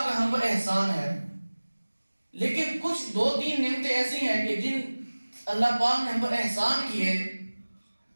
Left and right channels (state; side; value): inverted; both; correlation -1.00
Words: کا ہم پر احسان ہے۔ لیکن کچھ 2-3 نعمتیں ایسی ہیں کہ جن اللہ پاک نے ہم پر احسان کیے،